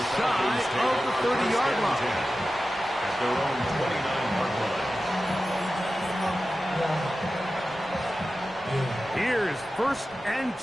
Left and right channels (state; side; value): normal; both; correlation 0.94